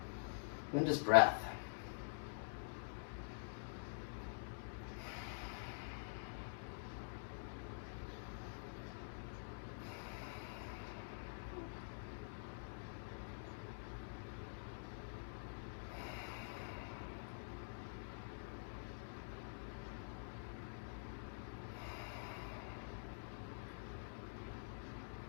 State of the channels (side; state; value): right; silent; digital silence